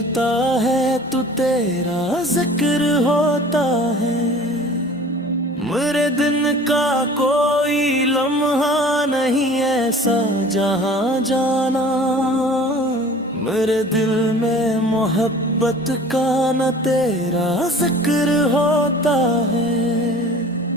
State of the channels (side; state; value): both; normal; correlation 0.45